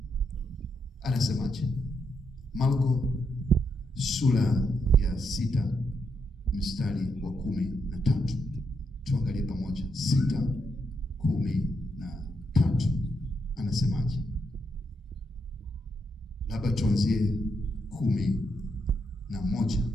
Anasemaje? Marko sura ya 6 mstari wa 13. Tuangalie pamoja. 6:13. Anasemaje? Labda tuanzie 11,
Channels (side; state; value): both; normal; correlation 0.80